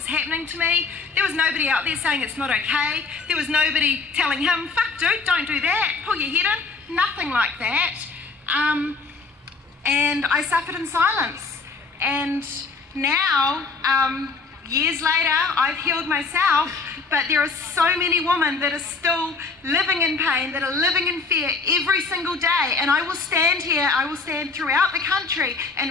happening to me. There was nobody out there saying it's not okay. There was nobody telling him, fuck dude, don't do that, pull your head in. Nothing like that. And I suffered in silence. And now, years later, I've healed myself, but there are so many women that are still living in pain, that are living in fear every single day, and I will stand here, I will stand throughout the country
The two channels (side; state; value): right; quieter; 4.4 dB